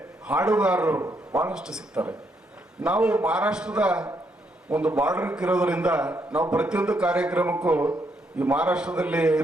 ಹಾಡುಗಾರರು ಬಹಳಷ್ಟು ಸಿಗ್ತಾರೆ. ನಾವು ಮಹಾರಾಷ್ಟ್ರದ ಒಂದು ಬಾರ್ಡರ್ ಇರೋದ್ರಿಂದ ನಾವು ಪ್ರತಿಯೊಂದು ಕಾರ್ಯಕ್ರಮಕ್ಕೂ ಈ ಮಹಾರಾಷ್ಟ್ರದಲ್ಲಿ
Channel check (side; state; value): both; normal; correlation 0.76